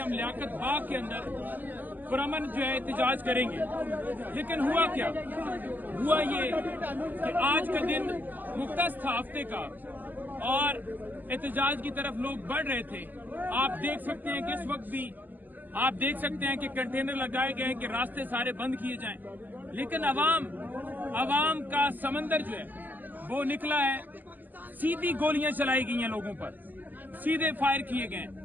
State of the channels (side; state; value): left; late; 0.085 ms